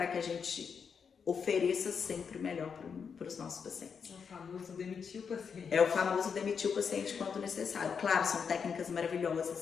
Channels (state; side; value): quieter; right; 6.4 dB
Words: que a gente ofereça sempre o melhor para os nossos pacientes. É o famoso demitir o paciente. É o famoso demitir o paciente quando necessário. Claro, são técnicas